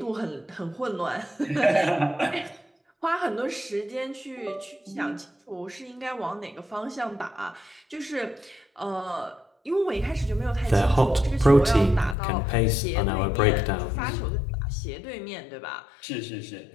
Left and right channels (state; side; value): drops out; right; at 12.2 s